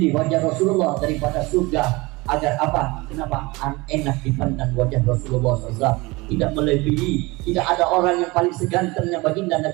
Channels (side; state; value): left; quieter; 23.3 dB